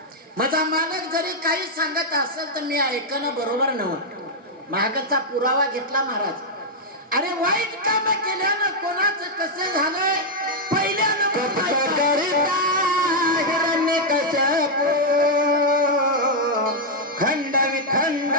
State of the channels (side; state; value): both; normal; correlation -0.02